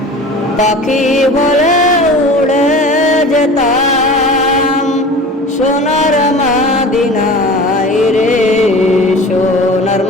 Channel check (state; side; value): normal; both; correlation 0.38